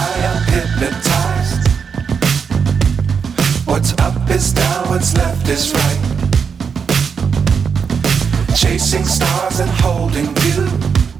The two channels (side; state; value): left; quieter; 6.3 dB